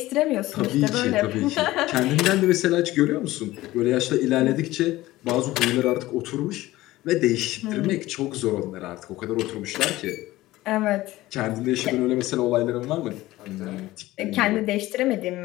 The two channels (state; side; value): quieter; right; 17.3 dB